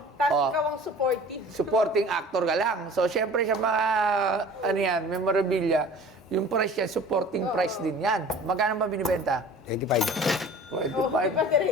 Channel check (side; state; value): both; normal; correlation 0.44